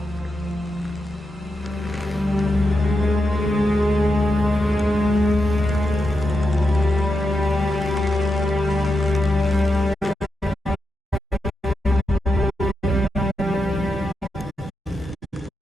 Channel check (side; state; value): both; normal; correlation 0.87